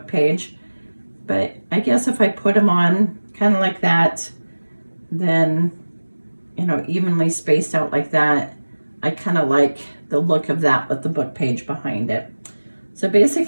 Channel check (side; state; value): both; inverted; correlation -1.00